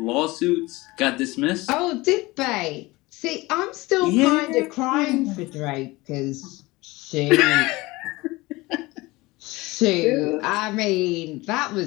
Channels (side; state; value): right; quieter; 21.4 dB